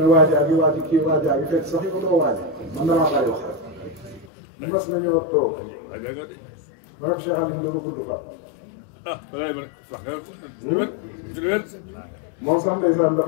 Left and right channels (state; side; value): drops out; right; at 4.3 s